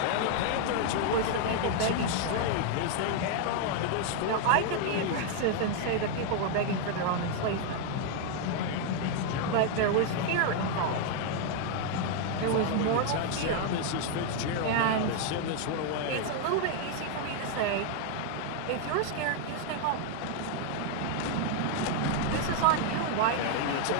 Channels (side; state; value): both; different; correlation 0.00